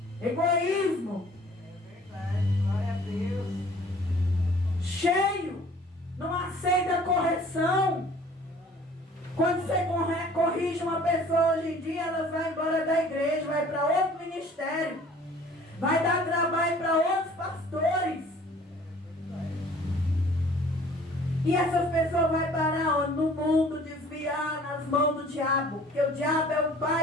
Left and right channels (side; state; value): both; normal; correlation 0.52